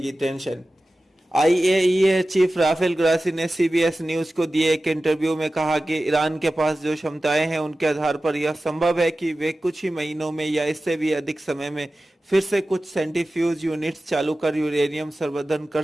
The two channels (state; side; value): normal; both; correlation 0.95